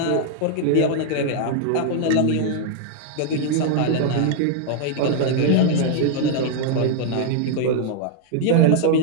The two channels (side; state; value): both; different; correlation 0.00